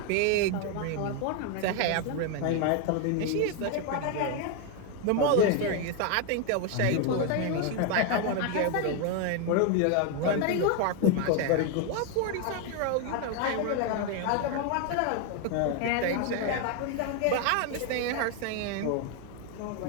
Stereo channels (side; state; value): both; different; correlation 0.01